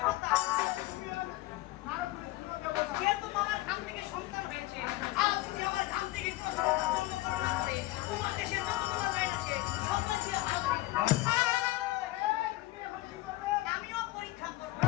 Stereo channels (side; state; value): right; quieter; 18.5 dB